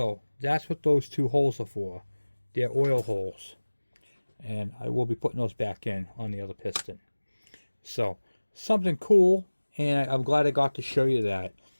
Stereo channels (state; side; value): inverted; both; correlation -1.00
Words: that's what those 2 holes are for. They're oil holes. And I will be putting those back in on the other piston. So something cool, and I'm glad I got to show you that.